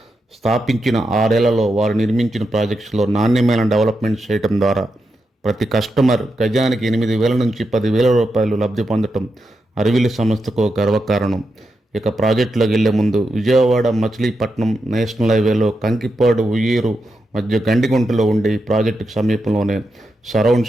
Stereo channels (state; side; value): normal; both; correlation 0.86